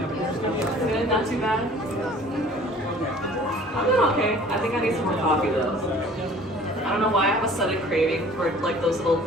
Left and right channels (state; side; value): normal; both; correlation 0.50